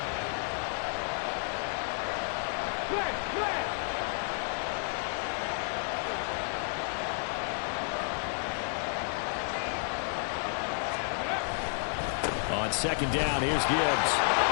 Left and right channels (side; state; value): right; silent; 57 dB below the other